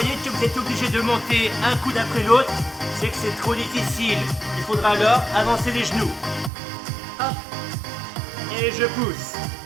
que vous êtes obligé de monter un coup d'après l'autre, c'est que c'est trop difficile. Il faudra alors avancer les genoux. Hop. Et je pousse.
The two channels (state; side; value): drops out; left; at 6.5 s